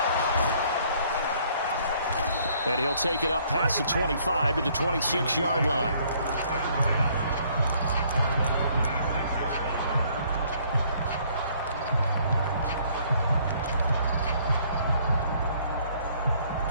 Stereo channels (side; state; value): both; inverted; correlation -0.63